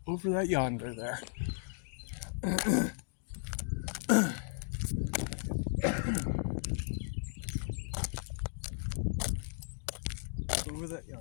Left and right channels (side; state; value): right; silent; digital silence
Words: yonder there. Over that